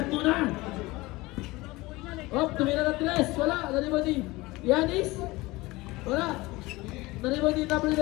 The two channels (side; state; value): right; quieter; 21.1 dB